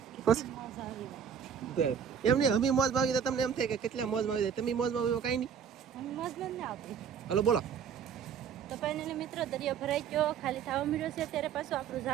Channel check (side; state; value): left; quieter; 7.6 dB